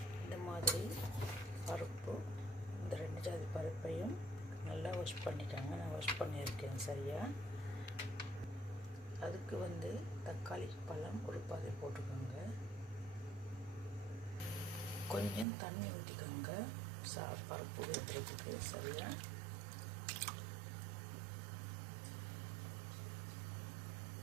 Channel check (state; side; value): drops out; left; at 15.5 s